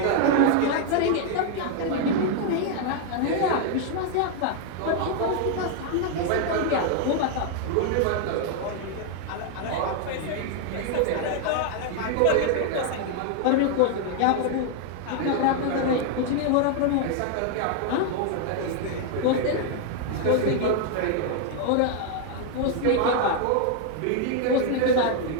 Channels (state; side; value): different; both; correlation 0.00